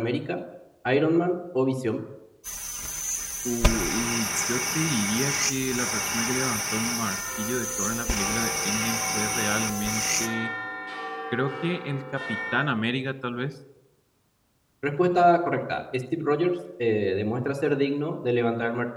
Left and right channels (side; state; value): both; identical; correlation 1.00